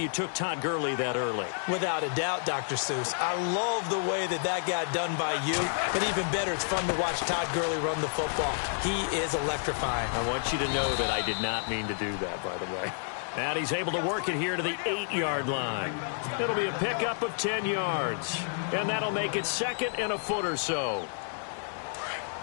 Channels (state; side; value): silent; right; digital silence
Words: you took Todd Gurley that early. Without a doubt, Dr. Seuss. I love the way that got done by you, but even better, it's fun to watch Todd Gurley run the football. He is electrifying. I want you to know that I did not mean to do that, by the way. And he's able to work it here to the 8-yard line. It'll be a pickup of 10 yards, and that'll make it 2nd and a foot or so.